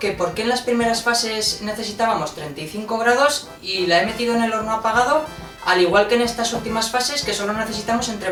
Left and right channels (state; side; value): identical; both; correlation 1.00